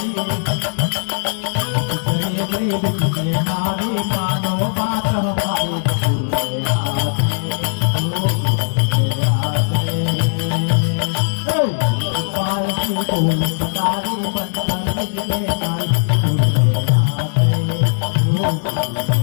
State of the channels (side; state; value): right; silent; digital silence